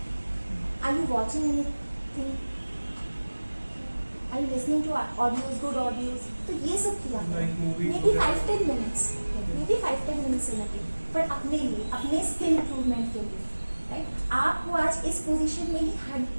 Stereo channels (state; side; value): inverted; both; correlation -1.00